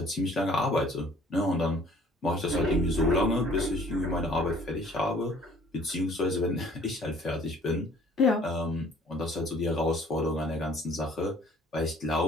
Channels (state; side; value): normal; both; correlation 0.55